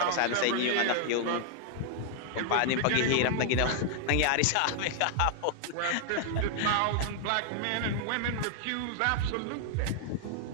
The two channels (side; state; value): both; different; correlation 0.00